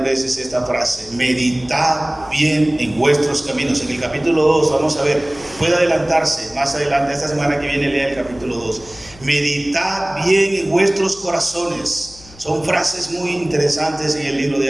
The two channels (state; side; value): noise; left; hum, 22 dB below the sound